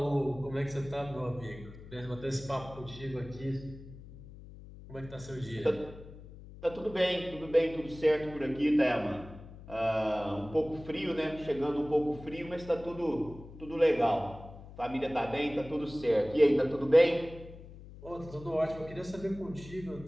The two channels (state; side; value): noise; left; hum, 16 dB below the sound